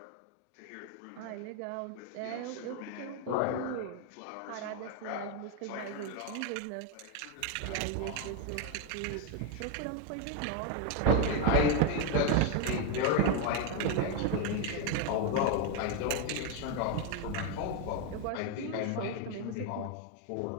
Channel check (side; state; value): both; different; correlation 0.01